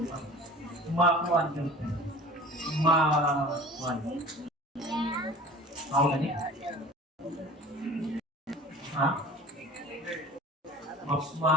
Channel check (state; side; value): normal; both; correlation 0.42